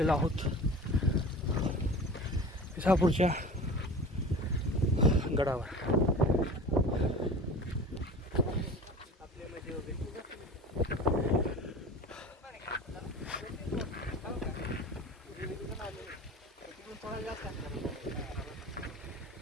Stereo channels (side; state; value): both; normal; correlation 0.37